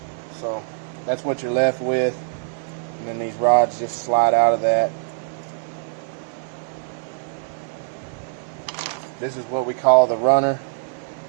So that's what you're left with, and then these rods just slide out of that. This is what we call the runner,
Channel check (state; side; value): silent; left; 58 dB below the other